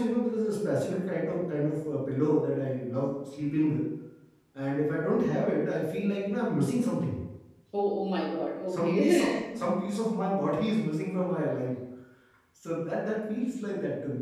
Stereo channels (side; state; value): both; identical; correlation 1.00